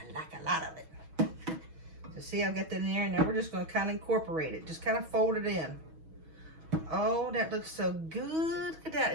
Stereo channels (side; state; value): left; late; 6.2 ms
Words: like a lot of it. So see, I've got that in there, and now we're just going to kind of incorporate it. Just kind of fold it in. Oh, that looks so good. Look at that.